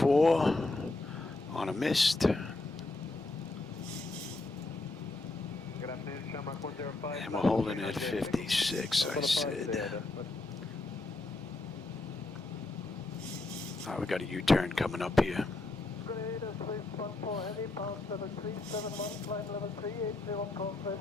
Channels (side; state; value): right; quieter; 3.1 dB